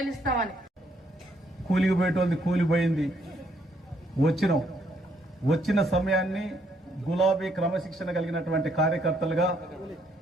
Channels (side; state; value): both; normal; correlation 0.71